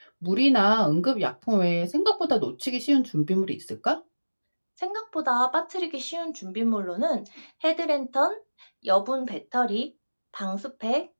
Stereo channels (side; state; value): both; inverted; correlation -1.00